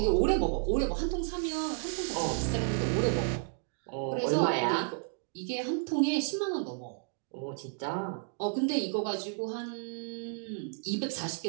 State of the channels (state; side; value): silent; left; 56 dB below the other